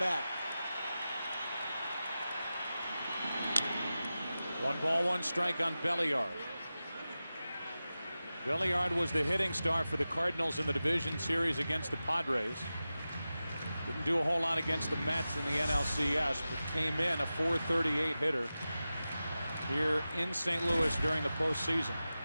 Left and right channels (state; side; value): inverted; both; correlation -0.94